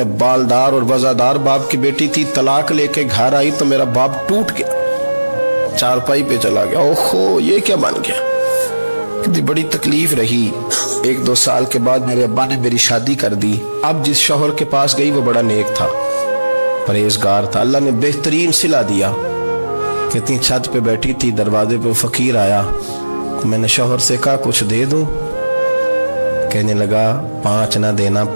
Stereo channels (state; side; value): inverted; both; correlation -1.00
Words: बालदार और वजादार बाप की बेटी थी, तलाक लेके घर आई तो मेरा बाप टूट गया, चारपाई पे चला गया। ओहो ये क्या बन गया। कहती बड़ी तकलीफ रही। 1-2 साल के बाद मेरे अब्बा ने मेरी शादी कर दी। अब जिस शौहर के पास गई वो बड़ा नेक था, परहेजगार था, अल्लाह ने बेहतरीन सिला दिया। कहती छत पे बैठी थी, दरवाजे पे फकीर आया तो मैंने शौहर से कहा कुछ दे दूं। कहने लगा 5 ना देना,